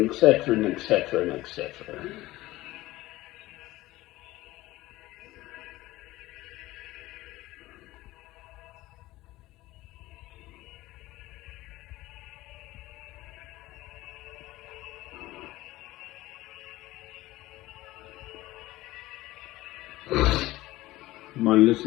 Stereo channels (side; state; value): right; quieter; 17.7 dB